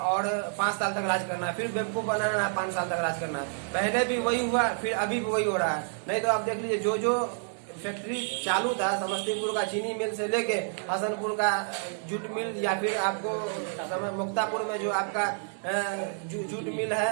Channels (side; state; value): left; silent; 59 dB below the other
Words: और 5 साल तक राज करना है, फिर बेवकूफ बनाना है, 5 साल तक राज करना है। पहले भी वही हुआ, फिर अभी भी वही हो रहा है। नहीं तो आप देख लीजिए जो फैक्ट्री चालू था, समस्तीपुर का चीनी मिल से लेके हसनपुर का जूट मिल, या फिर आपको मुक्तापुर में जो आपका जूट मिल